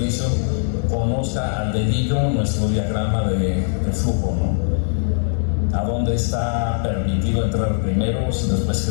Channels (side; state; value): right; silent; digital silence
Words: conozca al dedillo nuestro diagrama de flujo, ¿no? A dónde está permitido entrar primero, después